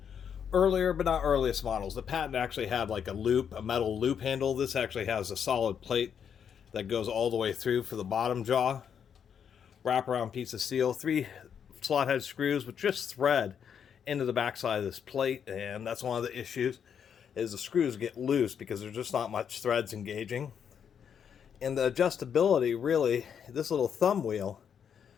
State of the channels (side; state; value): right; quieter; 7.8 dB